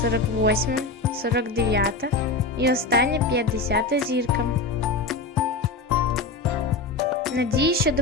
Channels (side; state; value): right; quieter; 3.6 dB